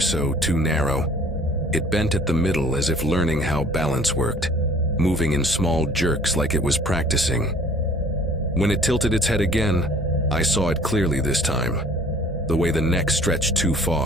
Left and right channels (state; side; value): normal; both; correlation 0.52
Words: too narrow. It bent at the middle as if learning how balance worked, moving in small jerks like it was practicing. When it tilted its head again, I saw it clearly this time. The way the neck stretched too